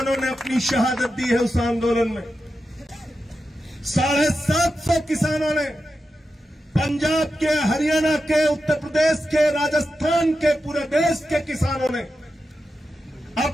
ने अपनी शहादत दी है उस आंदोलन में। 750 किसानों ने, पंजाब के, हरियाणा के, उत्तर प्रदेश के, राजस्थान के, पूरे देश के किसानों ने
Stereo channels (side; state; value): both; normal; correlation 0.90